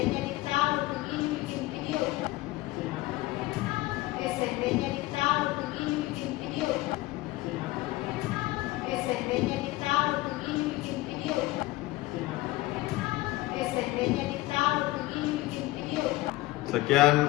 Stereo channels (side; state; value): right; quieter; 18.8 dB